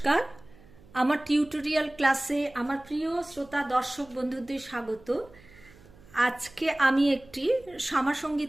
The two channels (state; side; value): noise; right; hum, 24 dB below the sound